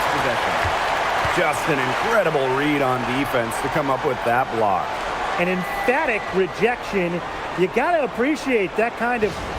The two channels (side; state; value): both; identical; correlation 1.00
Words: possession. Just an incredible read on defense to come up with that block. An emphatic rejection. You got to appreciate that kind of